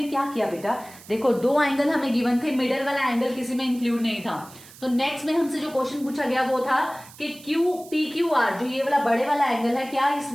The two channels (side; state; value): right; noise; hiss, 20 dB below the sound